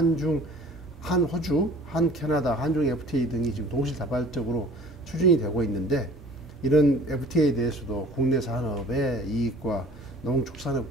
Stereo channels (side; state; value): both; normal; correlation 0.48